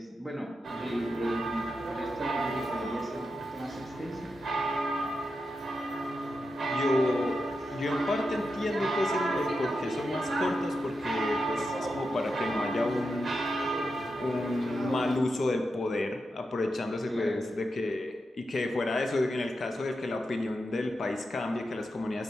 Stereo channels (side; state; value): both; normal; correlation 0.88